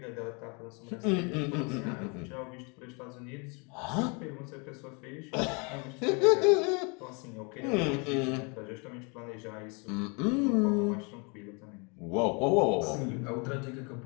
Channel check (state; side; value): quieter; right; 32.7 dB